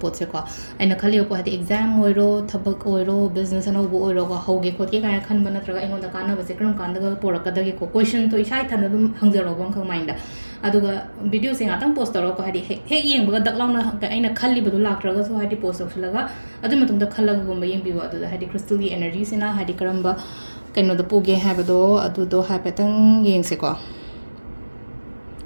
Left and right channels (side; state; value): both; inverted; correlation -1.00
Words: ꯄꯣꯠꯁꯦꯀꯣ ꯑꯩꯅ ꯈꯜꯂꯤꯕ ꯄꯣꯠ ꯍꯥꯏꯗꯤ ꯑꯦꯛꯖꯥꯝ ꯑꯣꯏꯔꯣ ꯊꯕꯛ ꯑꯣꯏꯔꯣ ꯕꯤꯖꯤꯅꯦꯁ ꯑꯅꯧꯕ ꯑꯣꯏꯔꯣꯀꯣ ꯍꯧꯒꯦ ꯈꯣꯠꯀꯦ ꯀꯥꯏꯅ ꯈꯟꯕ ꯅꯠꯇ꯭ꯔꯒ ꯑꯩꯉꯣꯟꯗ ꯀꯥꯟꯅꯕꯁꯦ ꯀꯔꯝ ꯀꯥꯟꯗꯒ ꯄꯣꯔꯛꯀꯗꯒꯦꯀꯣ ꯀꯣꯏꯁꯟꯗꯣ ꯏꯁꯥ ꯏꯊꯟꯗ ꯑꯗꯨꯝ ꯍꯪꯖꯔꯛꯑꯣꯕ ꯑꯃꯈꯛ ꯃꯥꯏꯟꯗ ꯑꯗꯨꯒ ꯚꯤꯗꯤꯑꯣꯁꯦ ꯉꯥꯛꯇꯪ ꯄꯣꯁ ꯇꯧꯔꯒꯀꯣ ꯍꯥꯏꯗꯤ ꯍꯦꯛ ꯌꯦꯡꯕꯒ ꯗꯛ ꯂꯥꯎꯅ ꯑꯩꯅ ꯈꯜꯂꯤꯕꯗꯣ ꯂꯥꯛꯇ꯭ꯔꯒꯁꯨ ꯍꯥꯏꯗꯤ ꯄꯣꯁ ꯇꯧꯁꯤꯜꯂꯒ ꯑꯗꯨꯒꯤ ꯃꯇꯨꯡꯗ ꯈꯜꯂꯒꯒꯨꯝꯕ ꯌꯦꯡꯕꯤꯌꯨ ꯑꯗꯨꯗ ꯍꯥꯏꯗꯤ ꯀ꯭ꯔꯤꯁꯇꯜꯒꯤ 에너지ꯁꯤꯅ ꯍꯥꯏꯗꯤ ꯀꯔꯝꯕ ꯀꯩꯅꯣꯗ ꯄꯨꯒꯦ ꯍꯥꯏꯕꯗꯣ ꯑꯗꯨꯗꯣ ꯍꯥꯏꯐꯦꯠꯇꯪ ꯌꯦꯡꯁꯦꯀꯣ